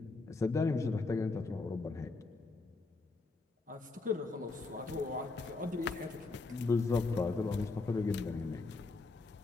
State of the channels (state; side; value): quieter; right; 3.7 dB